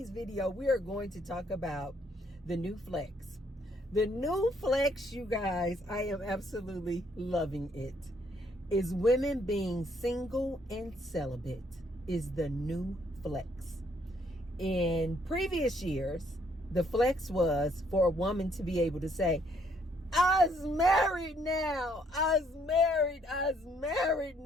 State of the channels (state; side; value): normal; both; correlation 0.68